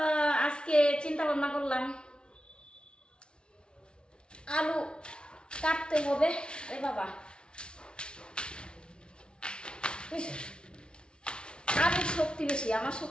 আজকে চিন্তা ভাবনা করলাম আলু কাটতে হবে। এ বাবা, আলুর শক্তি বেশি, আমার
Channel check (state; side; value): late; right; 0.056 ms